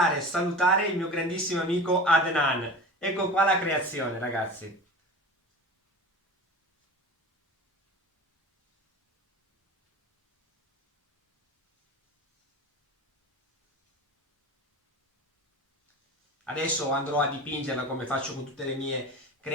e salutare il mio grandissimo amico Adnan. Ecco qua la creazione, ragazzi. Adesso andrò a dipingerla come faccio con tutte le mie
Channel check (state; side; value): normal; both; correlation 0.34